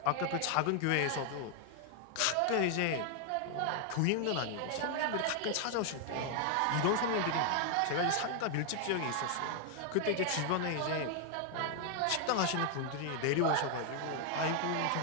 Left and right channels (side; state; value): both; different; correlation 0.00